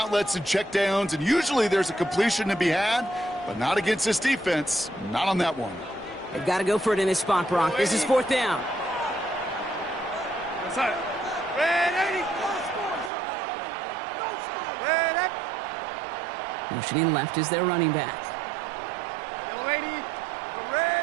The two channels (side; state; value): left; drops out; at 13.1 s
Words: and checkdowns, and usually there's a completion to be had, but not against this defense. Not on that one. They've got to go for it in this spot, Brock. This is 4th down. Motioning left is their running back.